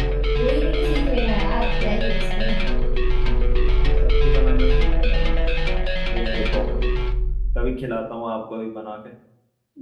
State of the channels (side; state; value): both; identical; correlation 1.00